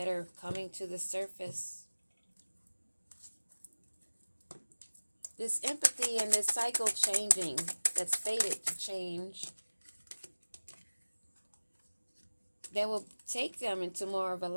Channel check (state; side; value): inverted; both; correlation -1.00